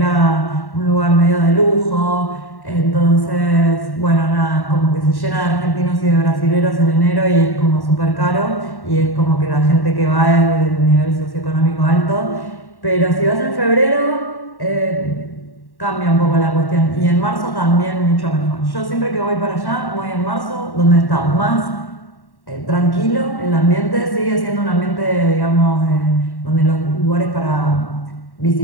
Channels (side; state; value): right; late; 1.1 ms